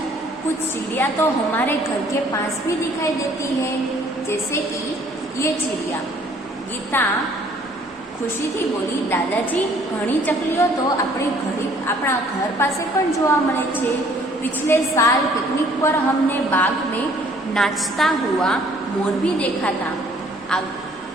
कुछ चिड़िया तो हमारे घर के पास भी दिखाई देती है, जैसे कि ये चिड़िया। गीता खुशी थी बोली, दादाजी घणी चकलीओ तो अपना घर पासे पण जोवा मळे छे। पिछले साल पिकनिक पर हमने बाग में नाचता हुआ मोर भी देखा था।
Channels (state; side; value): normal; both; correlation 0.59